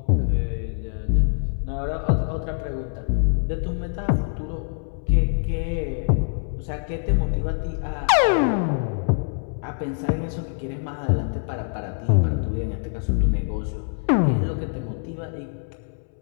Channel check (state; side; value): silent; right; 62 dB below the other